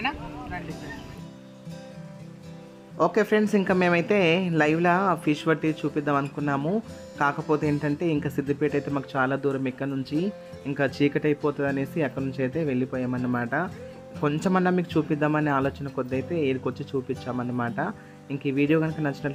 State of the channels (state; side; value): identical; both; correlation 1.00